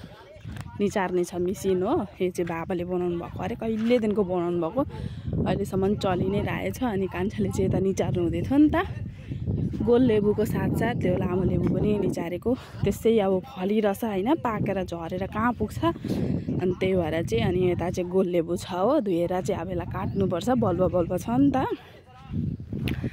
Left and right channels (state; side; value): identical; both; correlation 1.00